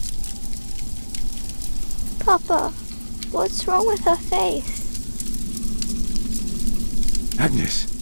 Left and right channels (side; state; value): both; inverted; correlation -1.00